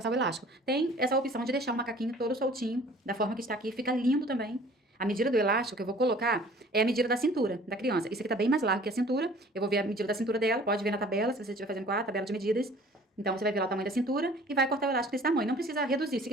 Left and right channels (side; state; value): both; normal; correlation 0.50